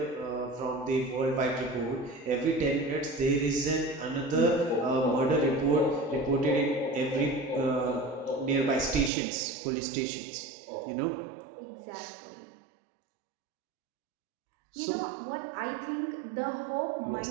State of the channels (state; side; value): drops out; left; at 9.1 s